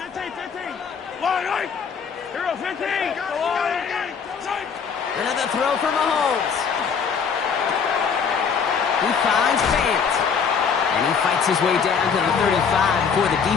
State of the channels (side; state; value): right; quieter; 6.3 dB